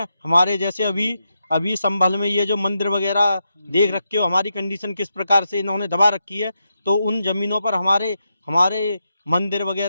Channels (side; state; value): both; inverted; correlation -0.85